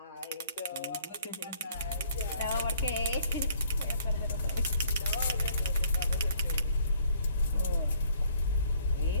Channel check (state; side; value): inverted; both; correlation -0.61